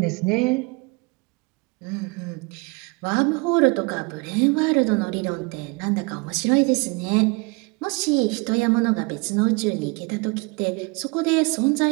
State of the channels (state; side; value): quieter; left; 29.0 dB